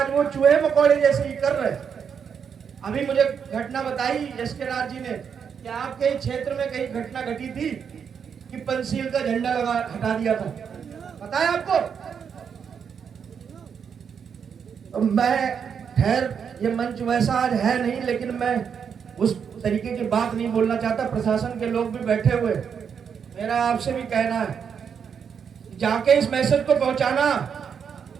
वो चूहे मकोड़े जैसे ही कर रहे। अभी मुझे घटना बताई एसके राज जी ने कि आपके क्षेत्र में कहीं घटना घटी थी कि पंचशील का झंडा हटा दिया था, पता है आपको? तो मैं खैर ये मंच वैसा आज है नहीं, लेकिन मैं उस तरीके की बात नहीं बोलना चाहता। प्रशासन के लोग भी बैठे हुए, मेरा आपसे भी कहना है जाके इस मैसेज को पहुंचाना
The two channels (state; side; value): quieter; left; 7.1 dB